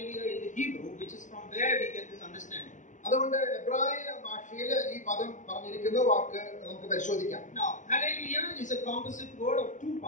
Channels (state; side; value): late; right; 0.36 ms